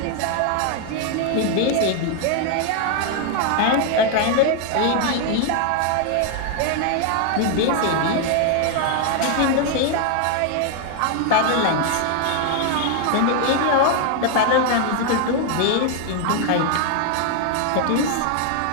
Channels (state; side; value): different; both; correlation 0.00